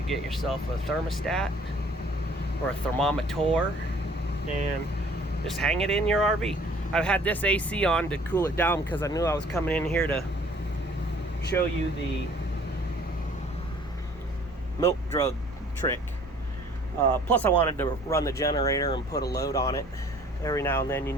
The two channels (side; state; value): both; normal; correlation 0.54